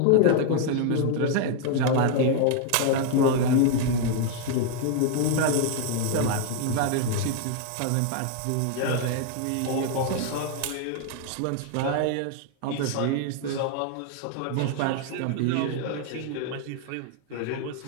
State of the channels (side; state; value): both; different; correlation 0.00